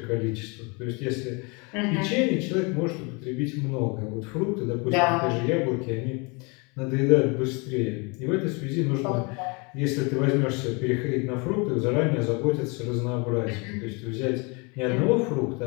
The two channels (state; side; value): quieter; right; 30.6 dB